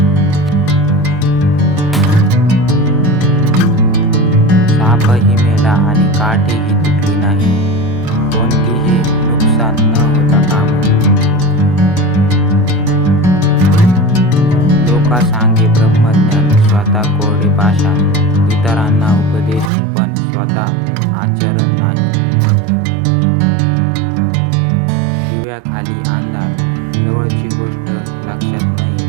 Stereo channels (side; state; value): left; drops out; at 19.7 s